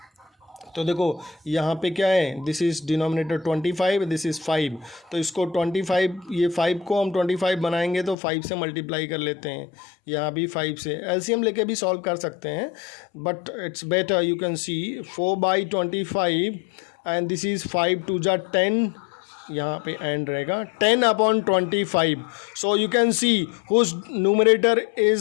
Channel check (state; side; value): drops out; right; at 8.2 s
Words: तो देखो यहाँ पे क्या है, this is denominator 25, this is 5. तो इसको 25, ये 5 को हम 25 बनाएंगे तो 5 से मल्टीप्लाई कर लेते हैं. यहाँ भी 5 से एलसीएम लेके भी सॉल्व कर सकते हैं, but it's better you can see 4/25 and this is 5 2 जा 10. यहाँ पे एंड रहेगा 10/25. So you can see whose numerator